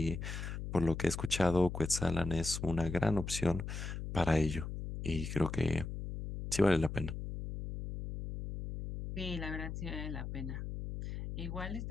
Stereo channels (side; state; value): left; noise; hum, 6 dB below the sound